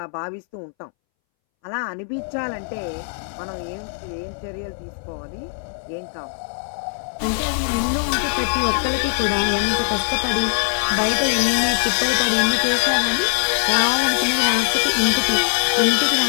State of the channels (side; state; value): right; silent; 64 dB below the other